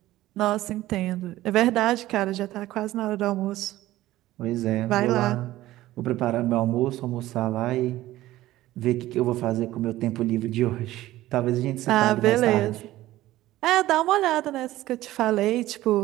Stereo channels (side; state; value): left; quieter; 15.8 dB